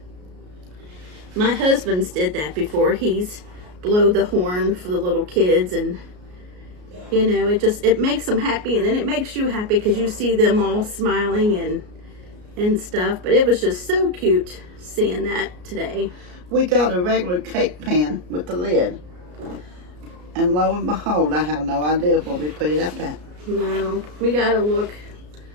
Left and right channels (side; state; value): left; late; 33 ms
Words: My husband's did that before. He's blowed the horn for the little kids, and you know, it makes them happy, and then it makes you happy because you see them all smiling and stuff. But it was just so cute seeing that today. We got a regular cake pan with the lid, and lo and behold, I have no idea where we put it up at. No, we gotta look.